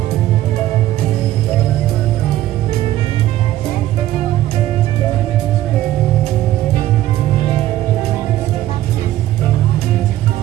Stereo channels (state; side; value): quieter; left; 14.1 dB